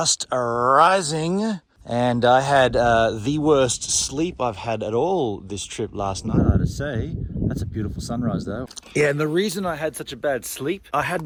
rising. And I had the worst sleep I've had at all this trip last night, I have to say. That's a beautiful sunrise though. Yeah, and the reason I had such a bad sleep, I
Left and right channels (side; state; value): both; identical; correlation 1.00